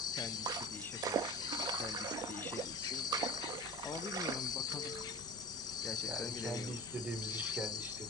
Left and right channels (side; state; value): both; normal; correlation 0.34